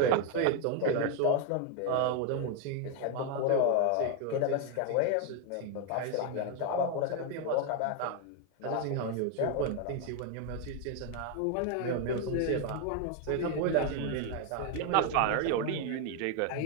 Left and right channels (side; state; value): both; different; correlation 0.01